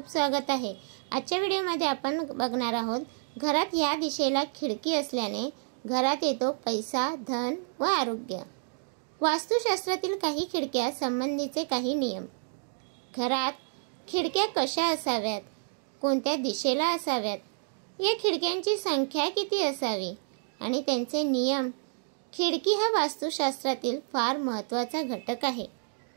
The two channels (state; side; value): silent; left; digital silence